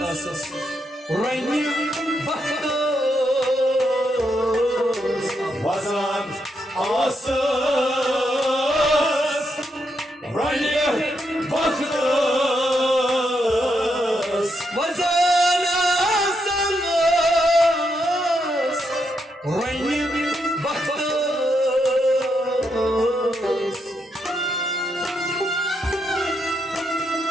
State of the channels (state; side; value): normal; both; correlation 0.80